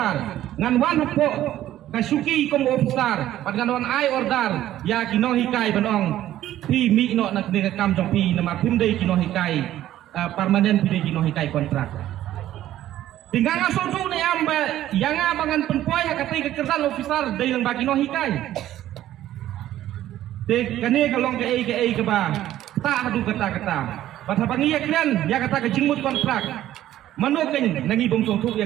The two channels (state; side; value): quieter; left; 13.1 dB